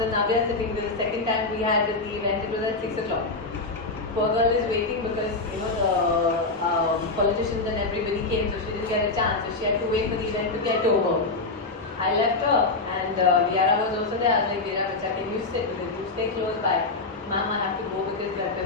and Navya sitting. The second time we had the event, it was at 6 o'clock. Poor girl is waiting because the politicians and everybody came, so she didn't get a chance. So she had to wait for the event to get over. I left her, and Viara was also there. I was like, Viara, bacha, can you sit? Because you stay close by. Mom, I have to go because we have a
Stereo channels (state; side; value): quieter; right; 3.4 dB